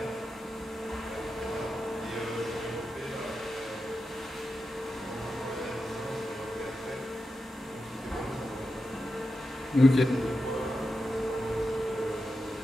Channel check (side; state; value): both; normal; correlation 0.90